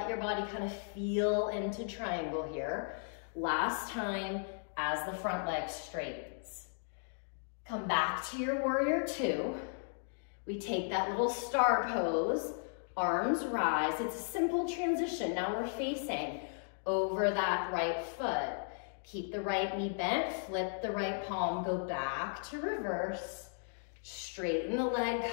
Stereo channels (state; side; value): silent; right; digital silence